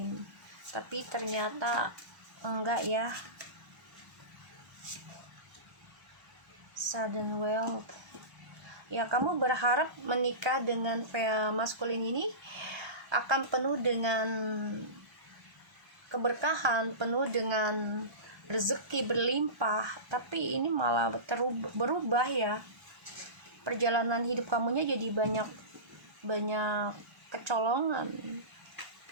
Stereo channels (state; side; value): late; left; 1.1 ms